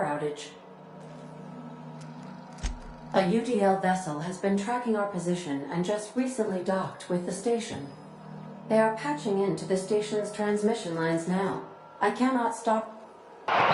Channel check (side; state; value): both; identical; correlation 1.00